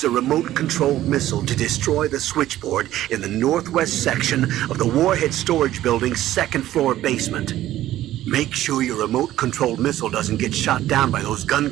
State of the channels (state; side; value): quieter; left; 13.9 dB